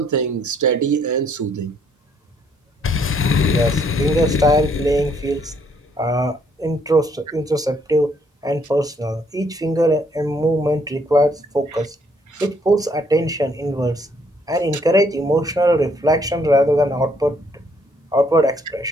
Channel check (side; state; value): both; normal; correlation 0.68